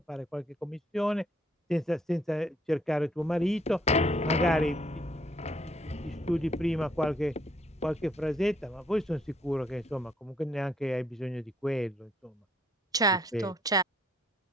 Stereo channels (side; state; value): both; normal; correlation 0.67